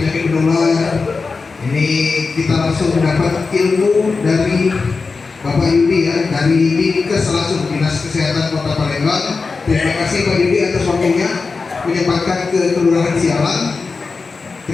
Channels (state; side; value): quieter; right; 4.4 dB